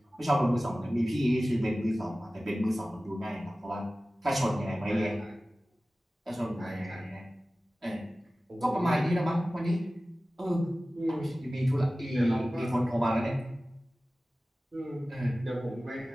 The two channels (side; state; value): both; normal; correlation 0.96